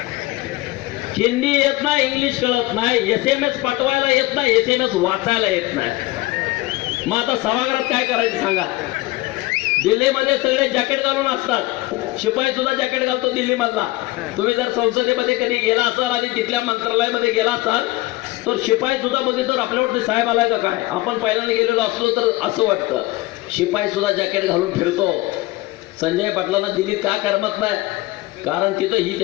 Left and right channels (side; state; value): right; quieter; 20.1 dB